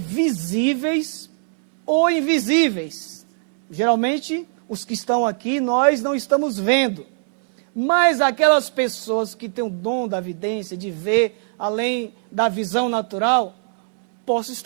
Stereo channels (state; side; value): silent; left; digital silence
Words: ou invisíveis. Geralmente, os que estão aqui, nós não estamos vendo. Mas aquelas pessoas que têm o dom da vidência, de ver além da visão natural, posso